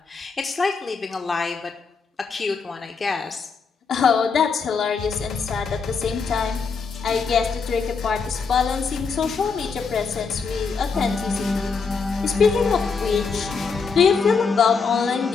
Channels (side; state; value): right; quieter; 5.2 dB